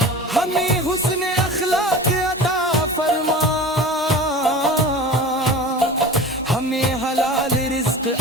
ہمیں حسن اخلاق عطا فرما ہمیں حلال رزق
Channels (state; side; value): normal; both; correlation 0.36